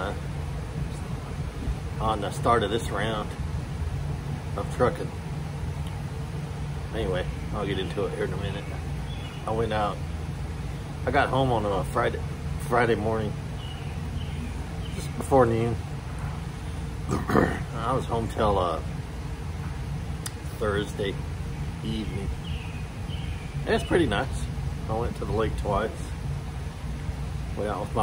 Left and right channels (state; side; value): identical; both; correlation 1.00